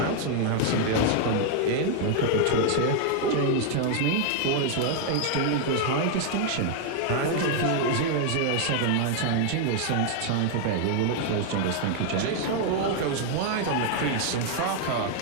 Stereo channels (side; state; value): both; different; correlation 0.00